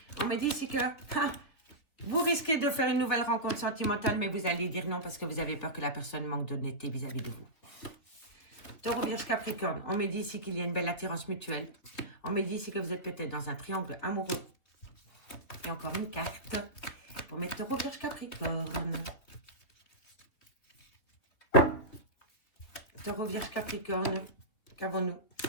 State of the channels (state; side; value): late; right; 3.3 ms